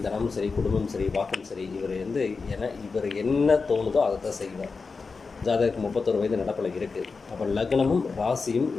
தனம் சரி, குடும்பம் சரி, வாக்கம் சரி, இவர் என்ன தோணுதோ அதை தான் செய்வார். ஜாதகருக்கு 31 வயது நடப்பில் இருக்குது. அப்போ லக்னமும் ராசியும்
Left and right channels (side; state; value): right; quieter; 4.6 dB